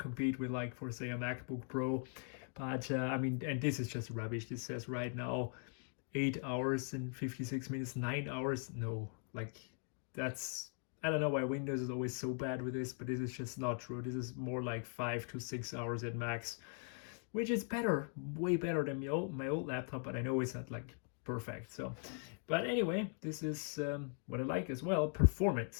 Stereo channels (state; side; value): silent; right; 51 dB below the other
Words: with, like, for say a MacBook Pro. But I mean, and this is just rubbish. This says right now 8 hours and 56 minutes, 9 hours. No, like, that's, I don't know why Windows is always so bad with this, but this is just not true. This is more like 5 to 6 hours at max, which is better, way better than my old laptop, but I know it's not like perfect. So, but anyway, this is what I like as well,